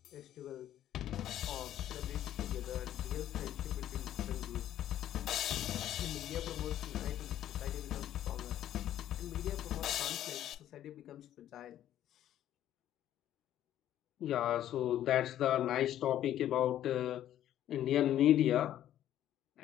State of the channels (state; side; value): quieter; right; 11.9 dB